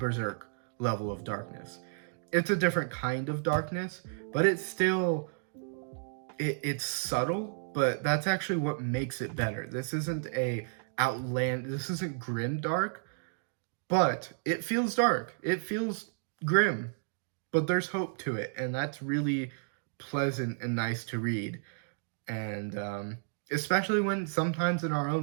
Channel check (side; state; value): left; silent; digital silence